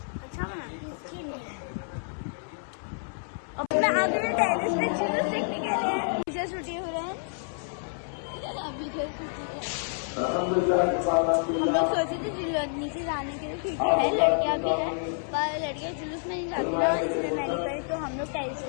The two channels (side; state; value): right; silent; 59 dB below the other